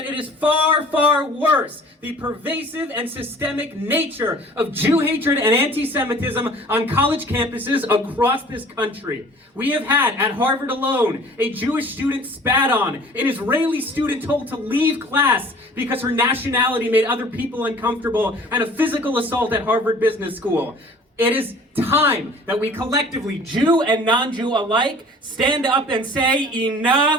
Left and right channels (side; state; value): both; normal; correlation 0.48